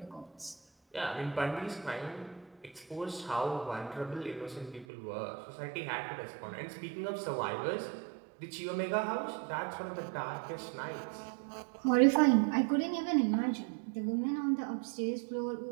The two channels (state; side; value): drops out; left; at 4.9 s